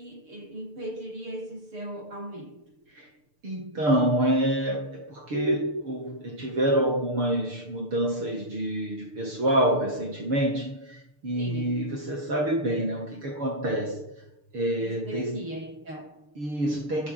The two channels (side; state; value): left; late; 6.8 ms